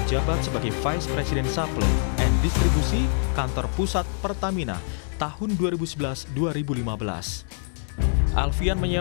menjabat sebagai Vice President Supply and Distribusi Kantor Pusat Pertamina tahun 2011-2015. Alfian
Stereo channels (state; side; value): silent; right; digital silence